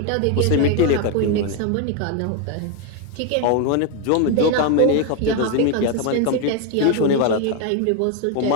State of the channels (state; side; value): different; both; correlation 0.01